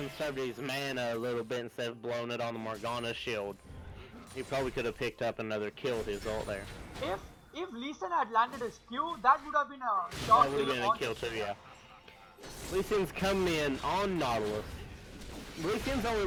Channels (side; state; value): both; identical; correlation 1.00